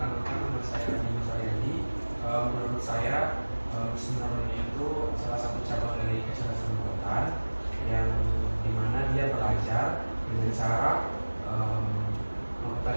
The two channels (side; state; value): both; inverted; correlation -1.00